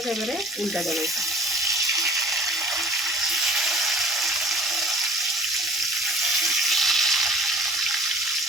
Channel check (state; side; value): normal; both; correlation 0.48